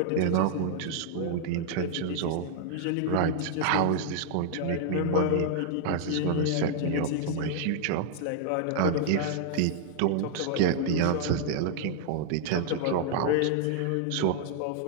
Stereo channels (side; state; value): both; different; correlation -0.01